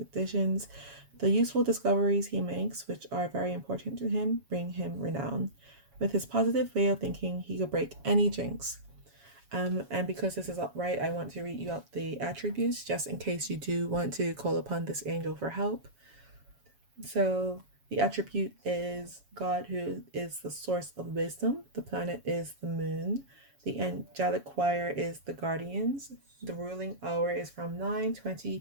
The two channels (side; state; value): left; late; 7.2 ms